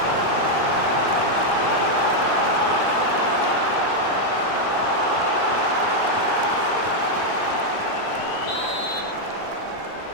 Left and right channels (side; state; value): right; late; 17 ms